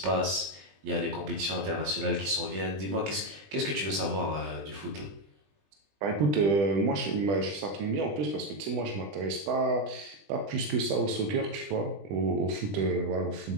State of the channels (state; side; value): late; left; 20 ms